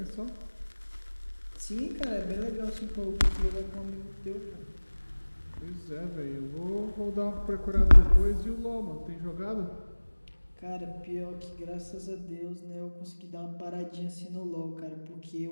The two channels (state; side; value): inverted; both; correlation -1.00